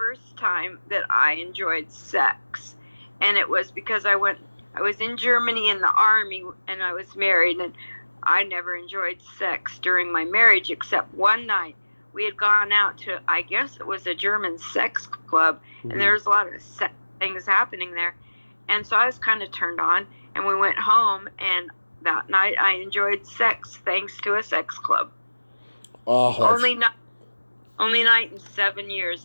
time that I enjoyed sex, and it was because I was in Germany in the army, and I was married, and I never enjoyed sex during my marriage, except one night we had gone out to, I guess it was a German sex club, Mm-hmm. and there was a lot of sex things happening there. And so I was kind of turned on, and we went home, and that night I enjoyed sex thanks to a sex club. Oh, Only night in 7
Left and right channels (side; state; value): both; inverted; correlation -1.00